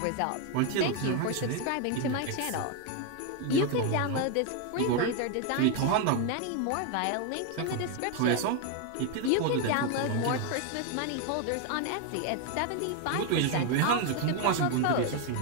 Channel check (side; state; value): both; different; correlation 0.01